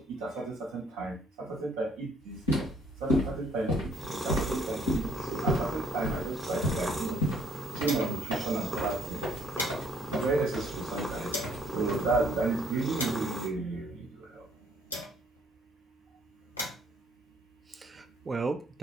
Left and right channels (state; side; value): normal; both; correlation 0.64